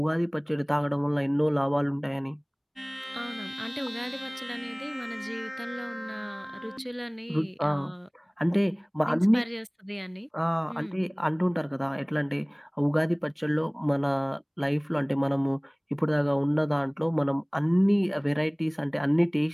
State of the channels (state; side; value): identical; both; correlation 1.00